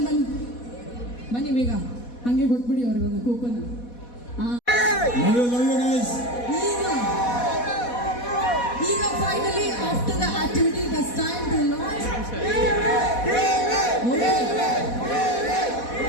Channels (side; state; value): right; late; 4.1 ms